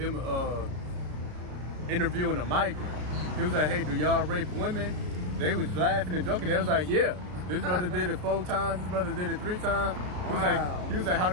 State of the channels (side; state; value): left; late; 33 ms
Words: interviewing a migrant. He was like, hey, do y'all rape women? They was laughing and joking. They was like, yeah. This brother did it 4 times. This brother did it 3 times. He was like, how